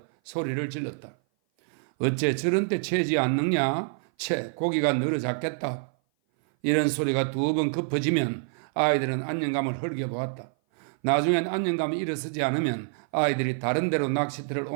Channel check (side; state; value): left; silent; 57 dB below the other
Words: 소리를 질렀다. 어째 저런 때 채지 않느냐? 고기가 늘어잡겠다. 이런 소리가 두 번 급해지면 아이들은 안녕감을 흘겨보았다. 나중엔 안녕감이 일어서지 않으면 아이들이 다른 데로 낚시터를